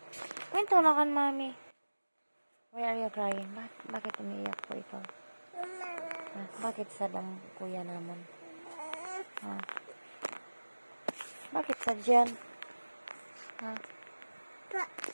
Kwento na kan, mami. Why are you crying? Bakit umiiyak po ikaw? Ha? Bakit sad ang kuya naman? Ha? Bakit sad yan? Ha?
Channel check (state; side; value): inverted; both; correlation -1.00